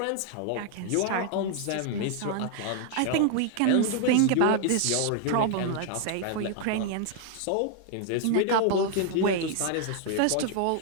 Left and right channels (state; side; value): different; both; correlation 0.00